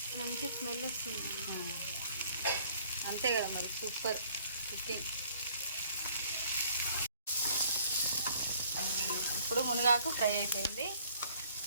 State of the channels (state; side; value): inverted; both; correlation -0.60